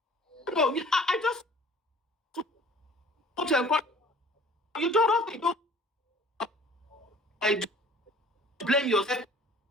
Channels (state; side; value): normal; both; correlation 0.50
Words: No, I just want to encourage you. Don't have to blame yourself.